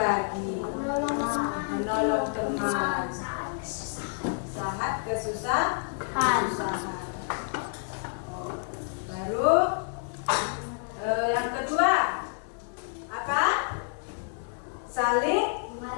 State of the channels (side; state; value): right; silent; 56 dB below the other